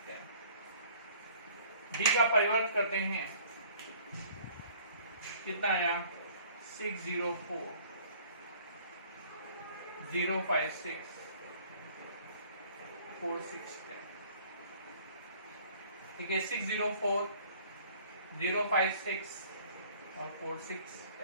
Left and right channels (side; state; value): both; inverted; correlation -0.54